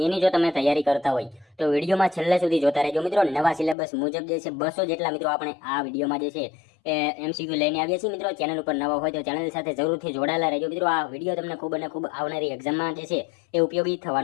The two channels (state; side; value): drops out; right; at 3.8 s